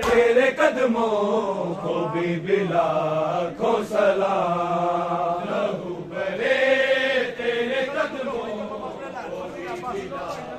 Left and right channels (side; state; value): both; identical; correlation 1.00